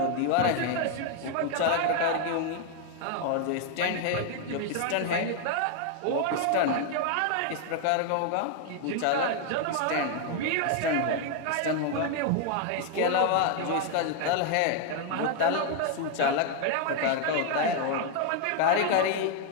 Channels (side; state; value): both; different; correlation 0.00